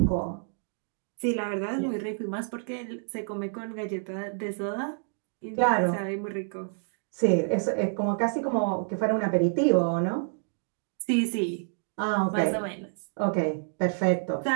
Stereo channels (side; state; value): left; silent; digital silence